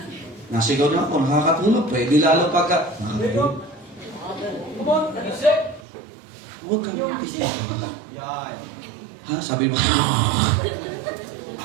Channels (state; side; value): drops out; left; at 5.8 s